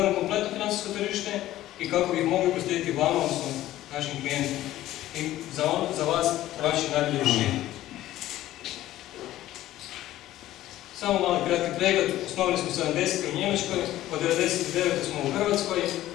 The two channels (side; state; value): right; quieter; 14.5 dB